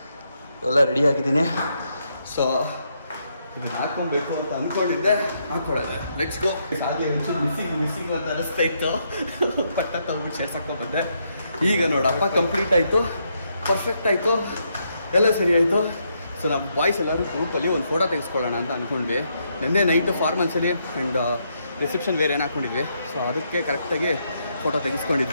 ಎಲ್ಲ ರೆಡಿ ಆಗಿದ್ದೀನಿ. ಸೊ ಇದನ್ನ ಹಾಕೊಬೇಕು ಅಂತ ಅಂದ್ಕೊಂಡಿದ್ದೆ, ಹಾಕೊಳ್ಳೋದು. Let's go. ಹಾಗೆ ಒಂಚೂರು ಮಿಸ್ಸಿಂಗ್ ಅಂತ ಅನಿಸ್ತಾ ಇತ್ತು. ಪಟ್ಟ ತಗೊಂಡ್ಬಿಟ್ಟು ಶೇರ್ಸ್ ಹಾಕೊಂಡ್ಬಂದೆ. ಈಗ ನೋಡಪ್ಪ ಕಂಪ್ಲೀಟ್ ಆಯಿತು, ಪರ್ಫೆಕ್ಟ್ ಆಯಿತು, ಎಲ್ಲ ಸರಿ ಆಯಿತು. ಸೊ ನಮ್ಮ ಬಾಯ್ಸ್ ಎಲ್ಲರೂ ಗ್ರೂಪಲ್ಲಿ ಒಂದು ಫೋಟೋ ತೆಗೆಸ್ಕೊಳ್ಳೋಣ ಅಂತ ಅಂದ್ಕೊಂಡ್ವಿ. ನಿನ್ನೆ ನೈಟು ಫಾರ್ಮಲ್ಸಲ್ಲಿ ಆ್ಯಂಡ್ ರಿಸೆಪ್ಷನ್ ವೇರ್ ಏನು ಹಾಕ್ಕೊಂಡಿದ್ವಿ. ಸೊ ಅದಕ್ಕೆ ಕರೆಕ್ಟಾಗಿ ಫೋಟೋ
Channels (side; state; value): both; inverted; correlation -0.77